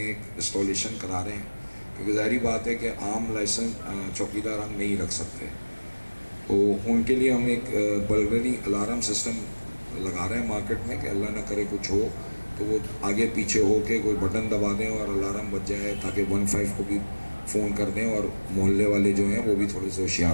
इंस्टॉलेशन करा रहे हैं, क्योंकि ज़ाहिर बात है कि आम लाइसेंस चौकीदार हम नहीं रख सकते, तो उनके लिए हम एक बर्गलरी अलार्म सिस्टम लगा रहे हैं मार्केट में कि अल्लाह ना करे कुछ हो तो वो आगे पीछे हो के कोई बटन दबा दें और अलार्म बज जाए, ताकि 15 को भी फ़ोन कर दें और मोहल्ले वाले जो हैं वो भी थोड़े से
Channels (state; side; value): inverted; both; correlation -1.00